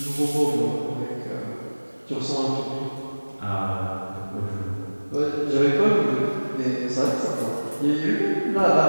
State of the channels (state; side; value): inverted; both; correlation -1.00